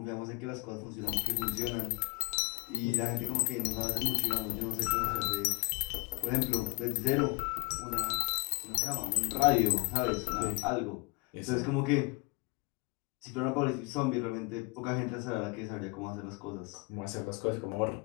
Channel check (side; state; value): right; quieter; 28.5 dB